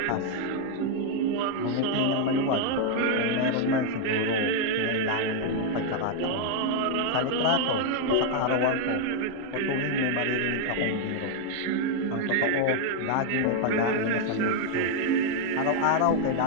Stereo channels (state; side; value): different; both; correlation 0.00